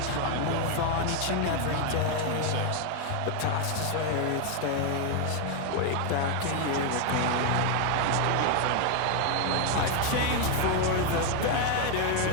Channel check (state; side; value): different; both; correlation 0.01